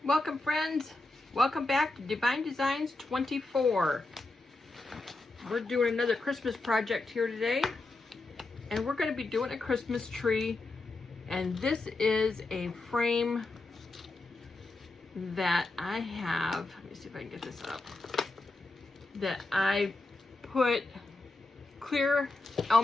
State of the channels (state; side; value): quieter; right; 3.1 dB